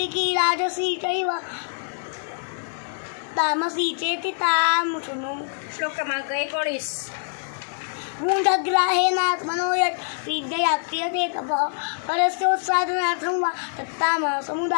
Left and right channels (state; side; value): silent; right; digital silence